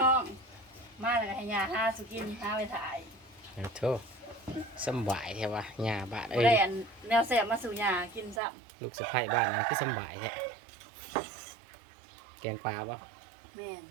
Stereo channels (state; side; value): drops out; left; at 8.4 s